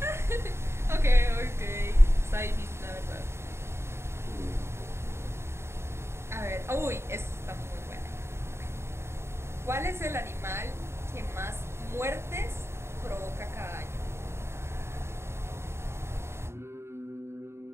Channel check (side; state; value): left; late; 0.12 ms